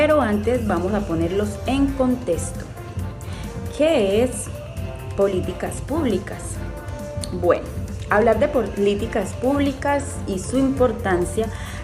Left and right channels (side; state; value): both; identical; correlation 1.00